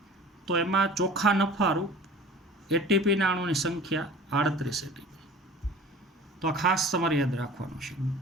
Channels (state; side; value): normal; both; correlation 0.42